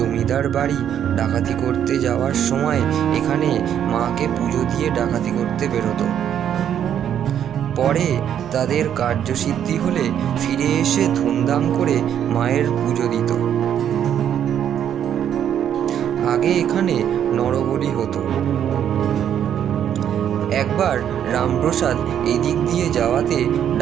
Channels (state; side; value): quieter; left; 9.5 dB